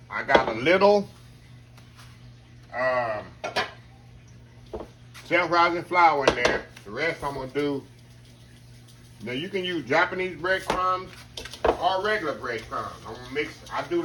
I got a little self-rising flour in there. The rest I'm going to do, now you can use Japanese breadcrumbs or regular breadcrumbs. I'm going to mix, I do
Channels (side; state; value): both; identical; correlation 1.00